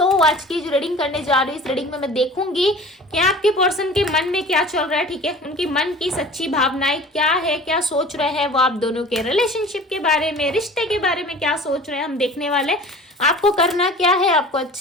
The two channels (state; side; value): normal; both; correlation 0.42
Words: आज की जो रीडिंग करने जा रही हूँ, इस रीडिंग में मैं देखूंगी कि आपके पर्सन के मन में क्या चल रहा है। ठीक है, उनकी मन की सच्ची भावनाएं क्या है, क्या सोच रहे हैं वो आप दोनों के रिलेशनशिप के बारे में, रिश्ते के बारे में क्या सोच रहे हैं, हम देखने वाले। आपको करना क्या है, आपको